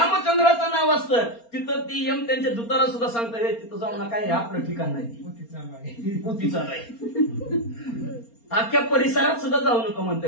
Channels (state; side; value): late; right; 4.3 ms